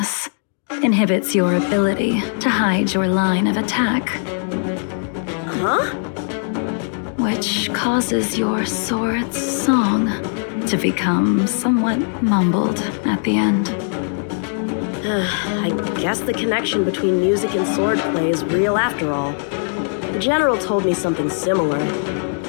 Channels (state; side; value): silent; right; 59 dB below the other